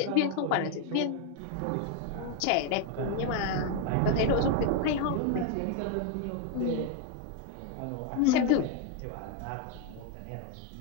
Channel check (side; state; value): both; different; correlation 0.01